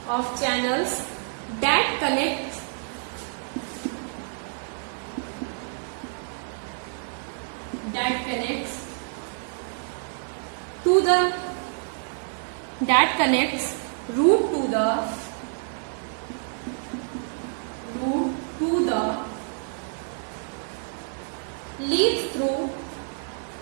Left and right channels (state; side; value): silent; left; 60 dB below the other